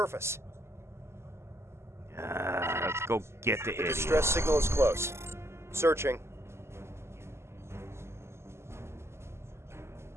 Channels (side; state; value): left; late; 0.13 ms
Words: Let's go get the idiot. Distress signal is close. Searching.